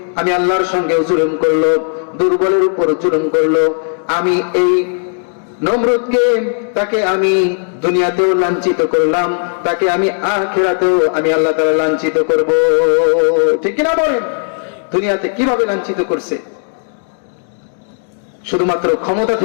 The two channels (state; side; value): silent; right; 61 dB below the other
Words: আমি আল্লাহর সঙ্গে জুলুম করলো, দুর্বলের উপর জুলুম করলো, আমি এই নমরুদকে, তাকে আমি দুনিয়াতেও লাঞ্ছিত করলাম, তাকে আমি আখিরাতেও আমি আল্লাহ তাআলা লাঞ্ছিত করব, ঠিক কিনা বলেন? দুনিয়াতে কিভাবে লাঞ্ছিত করছে? শুধুমাত্র ক্ষমতা